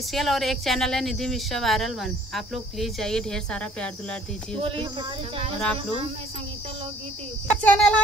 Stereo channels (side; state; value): both; normal; correlation 0.58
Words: और एक चैनल है निधि मिश्रा वायरल 1। आप लोग प्लीज जाइए, ढेर सारा प्यार दुलार दीजिए और आप लोग चैनल है